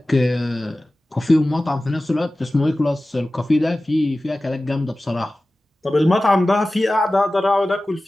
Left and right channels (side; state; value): both; normal; correlation 0.96